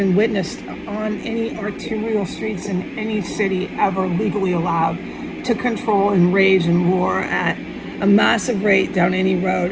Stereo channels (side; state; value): both; identical; correlation 1.00